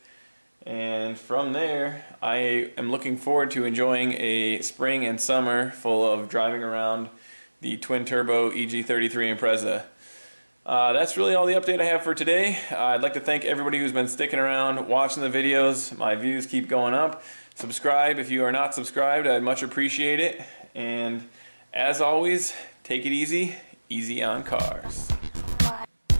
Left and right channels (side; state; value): both; inverted; correlation -1.00